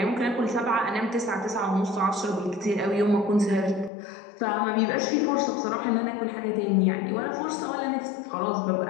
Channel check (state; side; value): drops out; right; at 3.9 s